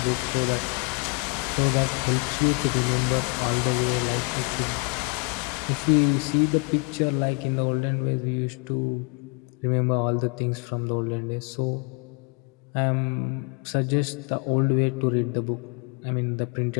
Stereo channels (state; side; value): quieter; right; 31.7 dB